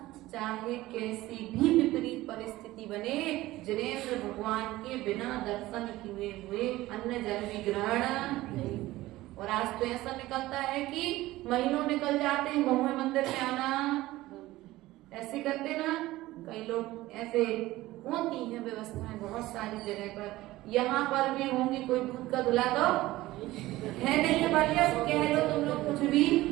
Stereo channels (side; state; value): left; quieter; 17.4 dB